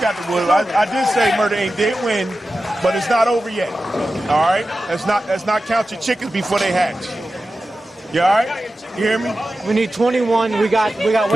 the wood. I did say Murder Inc. did win, but it's not over yet. All right? Let's not count your chickens before they hatch. You all right? You hear me? We need 21. We got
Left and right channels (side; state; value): both; normal; correlation 0.93